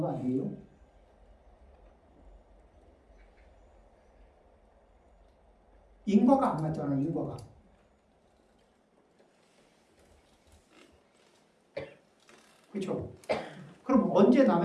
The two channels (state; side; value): identical; both; correlation 1.00